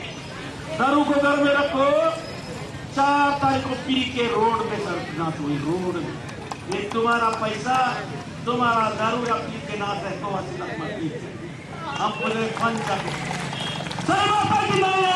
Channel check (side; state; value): both; identical; correlation 1.00